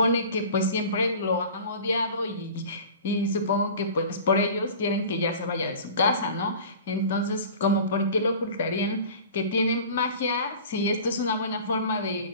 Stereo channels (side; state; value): both; inverted; correlation -0.40